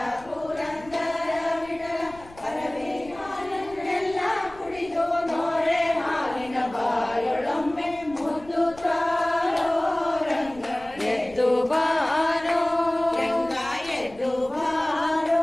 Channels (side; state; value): left; noise; rumble, 22 dB below the sound